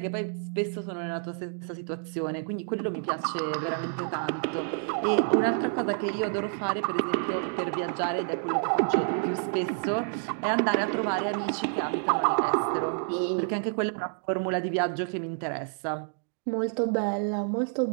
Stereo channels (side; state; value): left; silent; 59 dB below the other